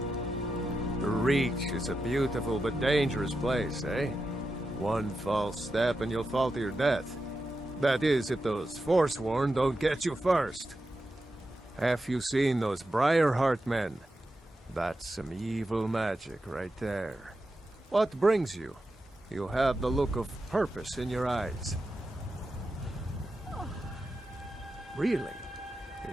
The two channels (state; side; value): normal; both; correlation 0.89